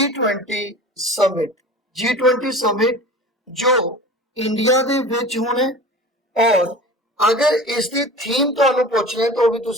summit. G20 summit जो इंडिया दे विच होना है, और अगर इसकी थीम तुहानू पुछना है तो भी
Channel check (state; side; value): normal; both; correlation 0.37